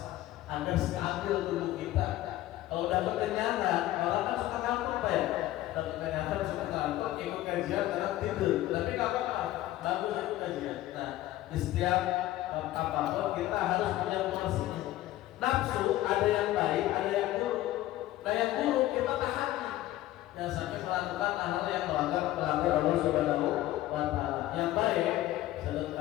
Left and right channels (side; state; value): right; quieter; 15.2 dB